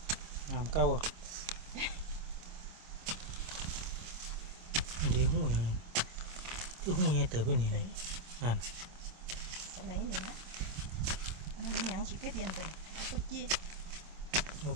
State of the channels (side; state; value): left; late; 25 ms